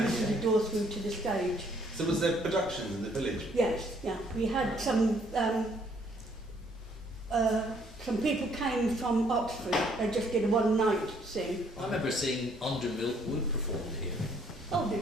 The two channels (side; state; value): both; normal; correlation 0.65